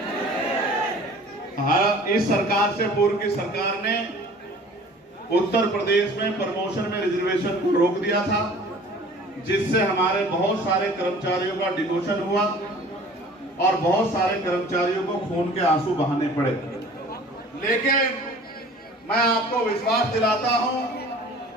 हाँ, इस सरकार से पूर्व की सरकार ने उत्तर प्रदेश में प्रमोशन में रिजर्वेशन को रोक दिया था, जिससे हमारे बहुत सारे कर्मचारियों का डिमोशन हुआ और बहुत सारे कर्मचारियों को खून के आंसू बहाने पड़े। लेकिन मैं आपको विश्वास दिलाता हूं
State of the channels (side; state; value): both; normal; correlation 0.47